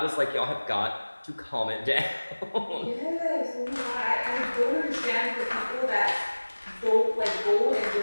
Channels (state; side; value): inverted; both; correlation -1.00